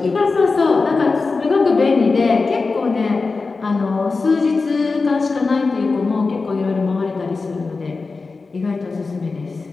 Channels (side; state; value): right; quieter; 4.1 dB